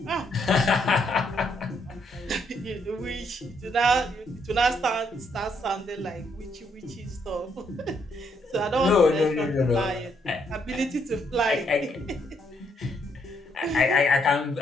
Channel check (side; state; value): both; normal; correlation 0.74